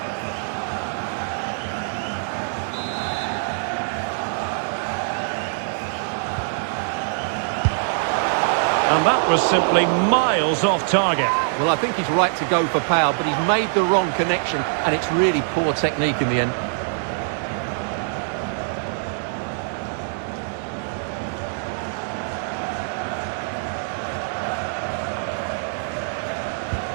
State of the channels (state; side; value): silent; left; digital silence